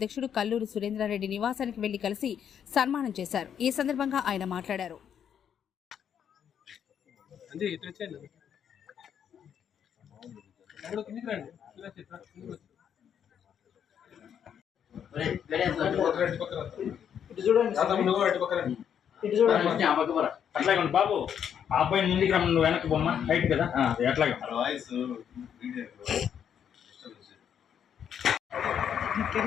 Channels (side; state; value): right; quieter; 8.6 dB